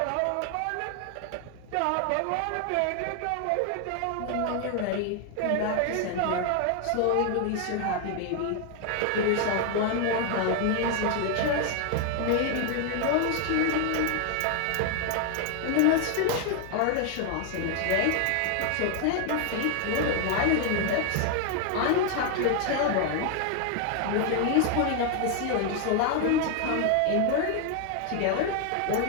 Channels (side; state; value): both; different; correlation 0.00